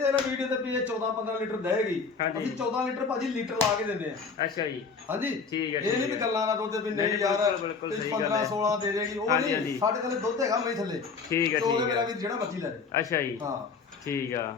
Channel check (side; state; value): right; quieter; 5.0 dB